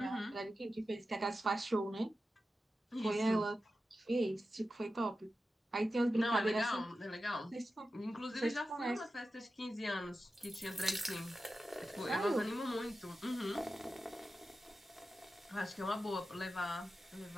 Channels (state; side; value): normal; both; correlation 0.92